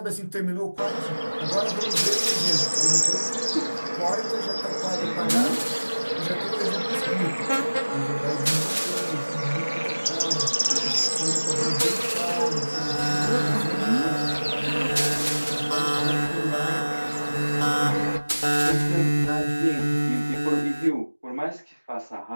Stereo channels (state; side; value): inverted; both; correlation -1.00